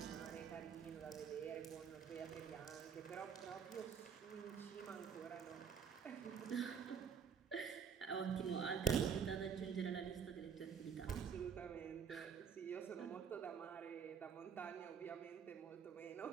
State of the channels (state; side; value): quieter; left; 6.9 dB